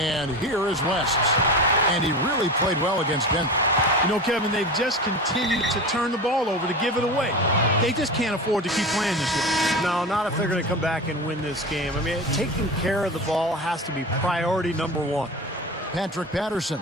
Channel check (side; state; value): both; normal; correlation 0.28